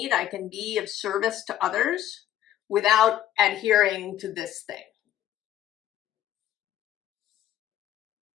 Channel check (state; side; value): quieter; right; 12.1 dB